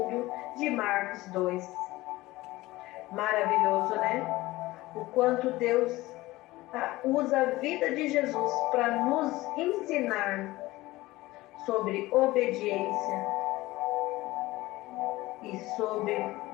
de Marcos 2. Maravilhoso, né? O quanto Deus usa a vida de Jesus para nos ensinar sobre obediência e sobre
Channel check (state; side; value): quieter; right; 18.8 dB